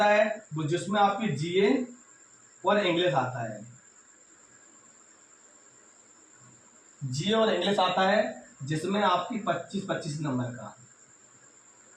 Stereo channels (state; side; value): identical; both; correlation 1.00